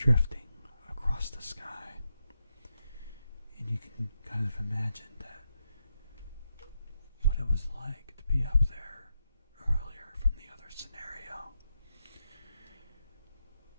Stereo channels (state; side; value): inverted; both; correlation -0.84